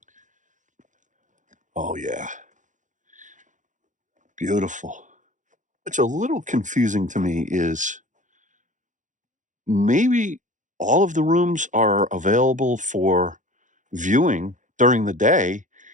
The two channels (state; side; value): late; left; 0.36 ms